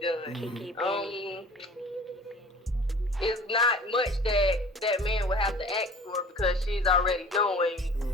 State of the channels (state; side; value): normal; both; correlation 0.45